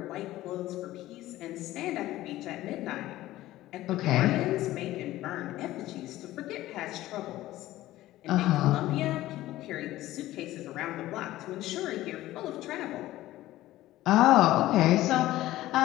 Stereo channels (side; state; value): right; quieter; 15.7 dB